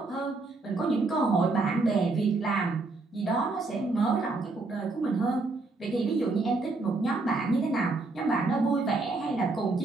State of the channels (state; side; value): quieter; left; 3.4 dB